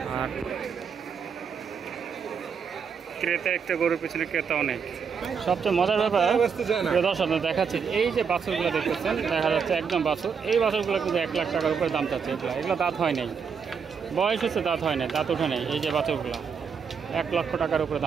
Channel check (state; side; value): quieter; left; 6.3 dB